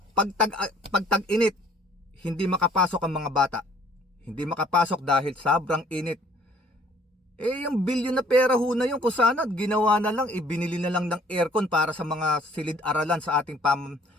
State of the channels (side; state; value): both; normal; correlation 0.58